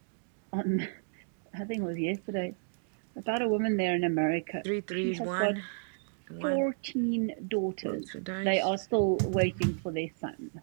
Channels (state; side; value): silent; left; digital silence